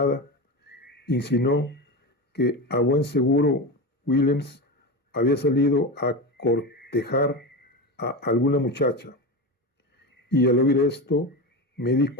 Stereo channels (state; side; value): normal; both; correlation 0.21